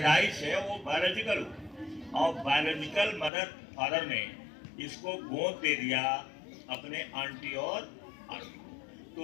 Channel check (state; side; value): drops out; right; at 3.3 s